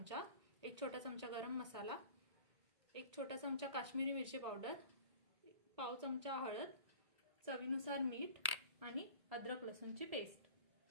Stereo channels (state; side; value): late; left; 1.8 ms